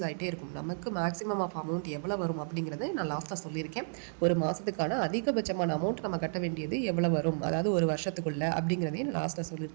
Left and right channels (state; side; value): silent; left; 56 dB below the other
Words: ஆகிட்டே இருக்கும். நமக்கு மேக்ஸிமம் ஆஃப் அமௌண்ட் எவ்வளோ வரும் அப்படிங்கிறத நான் லாஸ்ட்டாக சொல்லியிருக்கேன். ஒரு மாதத்துக்கான அதிகபட்சமான அமௌண்ட் நம்ம கட்ட வேண்டியது எவ்வளோ வரும், அதாவது ஒரு வருஷத்துக்குள்ள அப்படிங்கிறதையும் நான் லாஸ்ட்டில்